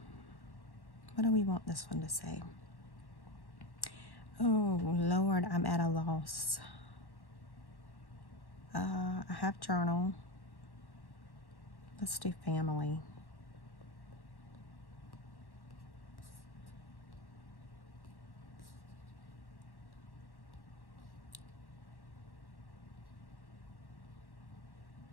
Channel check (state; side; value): late; right; 1.1 ms